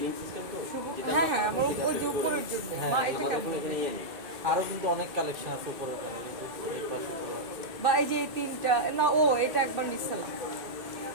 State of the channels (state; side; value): late; left; 2.6 ms